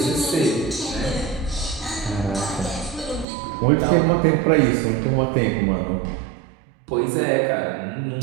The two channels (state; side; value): drops out; left; at 3.2 s